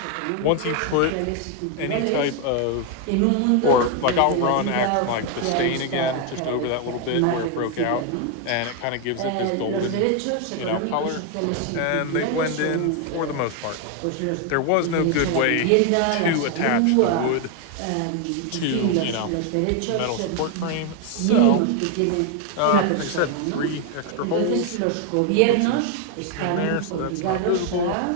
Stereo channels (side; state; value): both; different; correlation 0.01